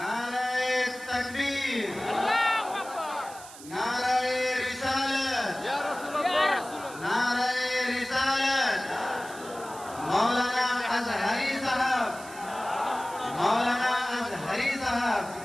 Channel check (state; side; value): noise; right; hiss, 16 dB below the sound